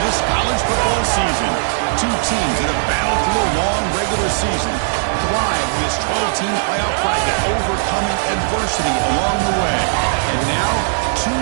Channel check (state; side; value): silent; left; digital silence